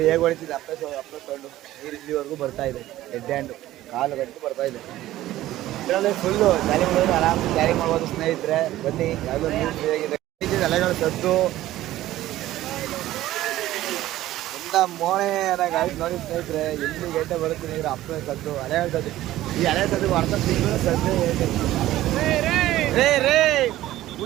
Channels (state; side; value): quieter; left; 14.9 dB